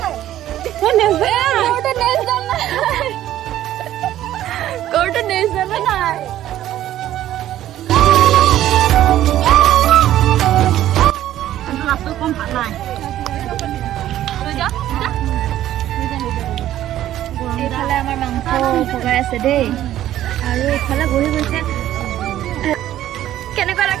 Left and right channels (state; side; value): quieter; left; 12.8 dB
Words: গৰুটো নেজ জানা নাই কম ভাল নাই এইফালে আমাৰ মাংস পকাই আছে দেই আৰু এইফালে বহি গৈছে